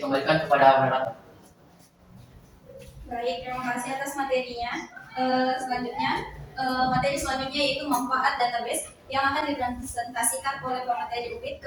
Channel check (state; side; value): identical; both; correlation 1.00